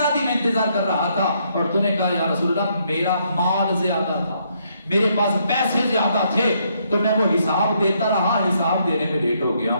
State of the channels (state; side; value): inverted; both; correlation -0.73